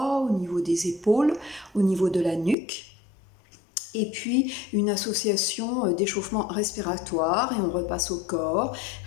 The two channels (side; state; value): right; drops out; at 2.6 s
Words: au niveau des épaules, au niveau de la nuque. Et puis une association d'échauffement respiratoire et on repasse au corps,